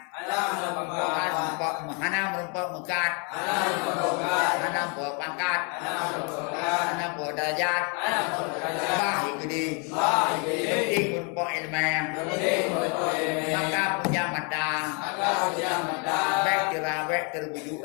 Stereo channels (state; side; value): quieter; right; 35.3 dB